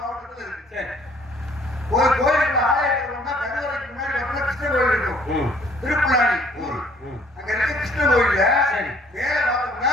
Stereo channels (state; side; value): normal; both; correlation 0.59